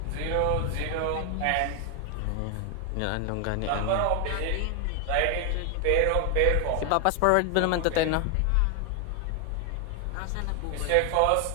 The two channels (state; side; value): different; both; correlation 0.00